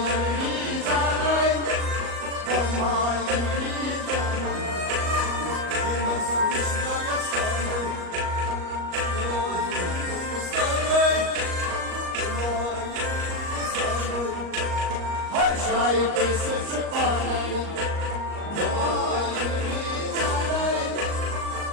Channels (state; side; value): late; left; 38 ms